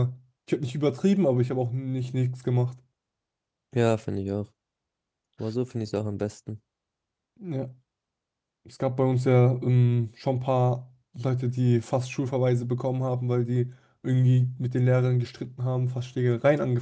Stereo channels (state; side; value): identical; both; correlation 1.00